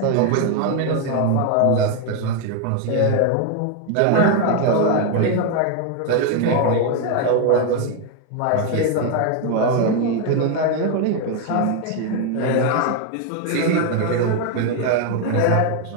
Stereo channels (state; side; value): different; both; correlation 0.01